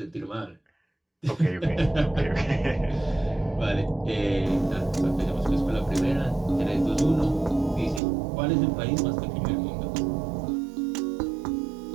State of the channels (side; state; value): left; drops out; at 8.0 s